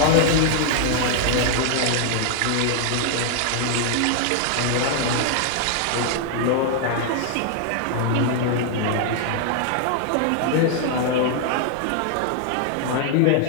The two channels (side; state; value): both; different; correlation 0.00